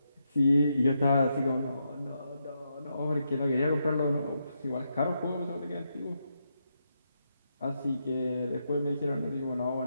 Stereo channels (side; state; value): both; inverted; correlation -0.83